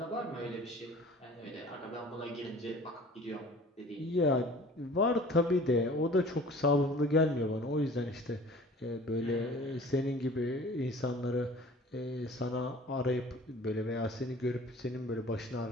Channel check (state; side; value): normal; both; correlation 0.46